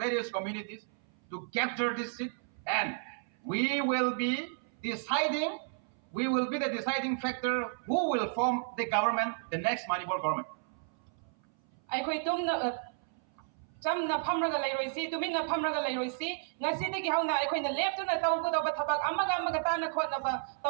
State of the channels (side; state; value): left; silent; 56 dB below the other